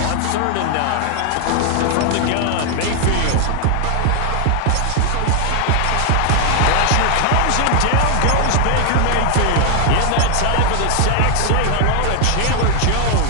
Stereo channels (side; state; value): both; different; correlation 0.00